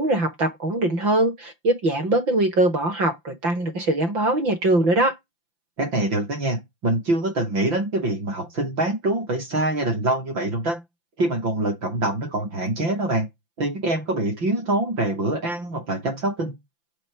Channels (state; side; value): late; left; 5.9 ms